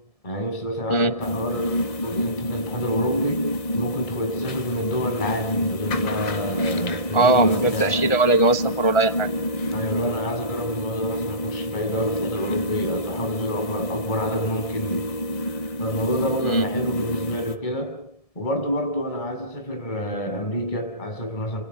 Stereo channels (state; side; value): late; right; 1.7 ms